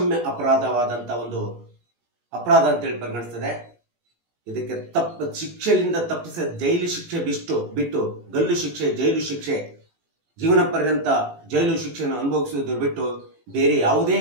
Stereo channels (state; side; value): late; left; 18 ms